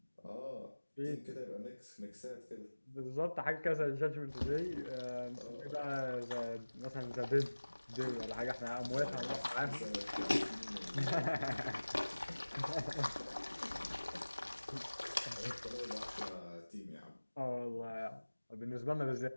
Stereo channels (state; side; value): inverted; both; correlation -1.00